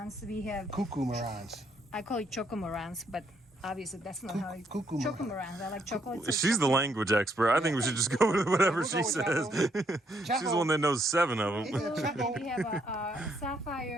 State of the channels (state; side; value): normal; both; correlation 0.73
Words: We have, Cuckoo marans. I call it chocomorans, but obviously that's not how it. Cuckoo marans. Chocomorans. I like chocolate. She's the language expert. I think we should just go with whatever We'll she go with says. She's the one that knows 7 of them. Yeah, Chaco. And we have a